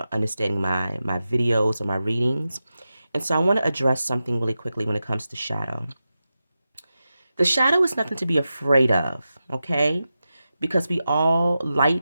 understanding my videos or my readings. And so I want to address something really quickly when it comes to shadow. The shadow is nothing to be afraid of, okay? Because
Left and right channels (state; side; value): inverted; both; correlation -0.92